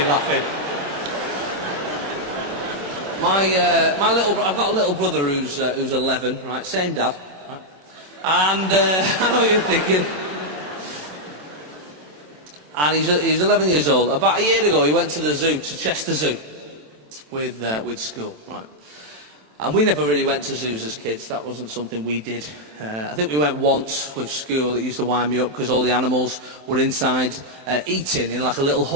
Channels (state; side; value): late; left; 27 ms